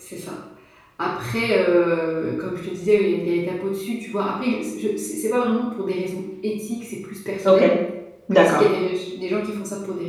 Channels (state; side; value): identical; both; correlation 1.00